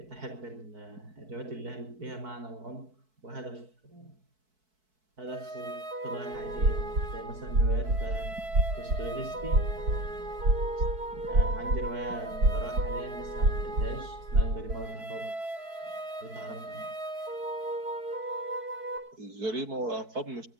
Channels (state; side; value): late; left; 4.6 ms